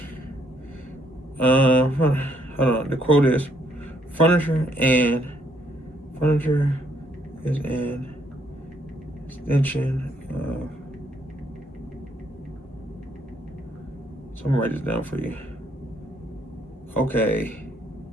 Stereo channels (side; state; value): both; normal; correlation 0.70